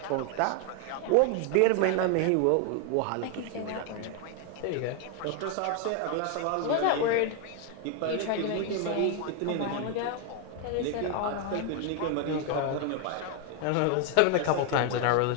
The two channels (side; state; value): both; different; correlation 0.01